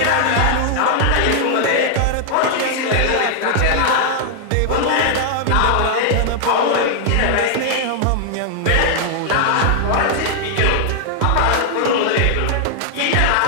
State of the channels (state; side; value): different; both; correlation 0.00